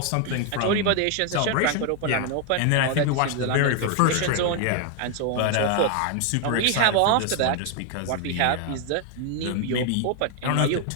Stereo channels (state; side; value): different; both; correlation 0.00